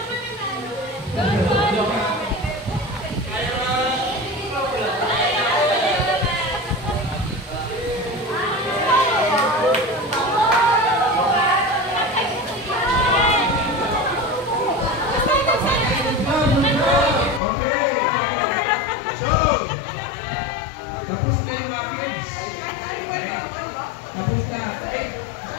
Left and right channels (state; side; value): drops out; right; at 17.4 s